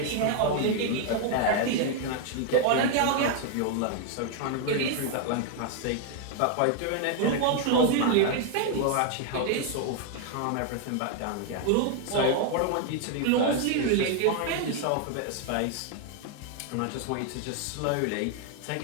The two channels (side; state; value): both; different; correlation 0.00